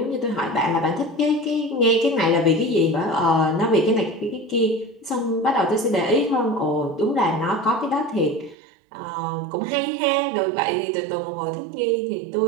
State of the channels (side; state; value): left; drops out; at 8.6 s